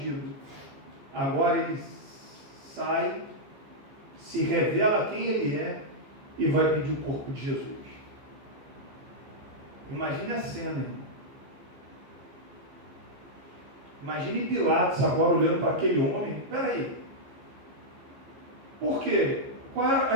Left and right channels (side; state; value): left; late; 15 ms